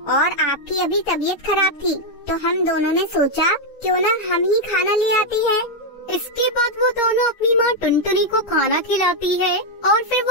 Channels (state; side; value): late; right; 9.6 ms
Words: और आपकी अभी तबीयत खराब थी तो हम दोनों ने सोचा क्यों ना हम ही खाना ले आती है। इसके बाद वो दोनों अपनी माँ टुनटुनी को खाना खिलाती है और फिर